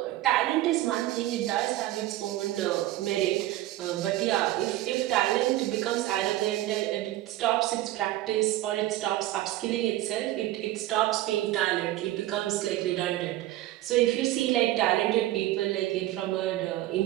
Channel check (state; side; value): quieter; left; 15.5 dB